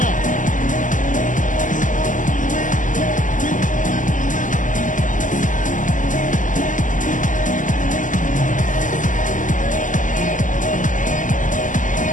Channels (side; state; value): right; late; 0.37 ms